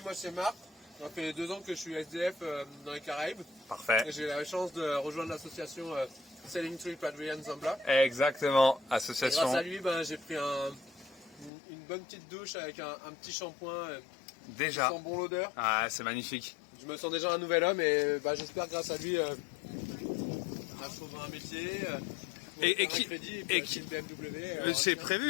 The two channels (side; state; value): right; drops out; at 11.5 s